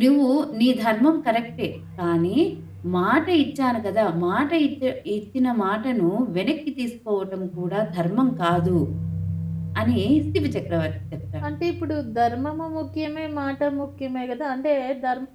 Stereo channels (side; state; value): both; identical; correlation 1.00